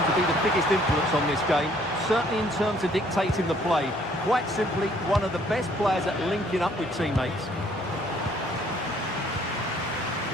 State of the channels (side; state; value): both; normal; correlation 0.62